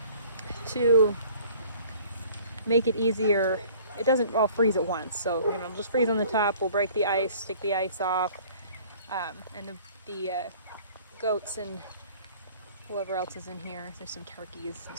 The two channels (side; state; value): both; inverted; correlation -0.52